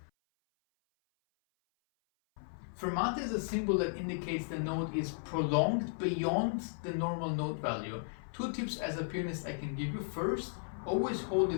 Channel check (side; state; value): right; silent; 54 dB below the other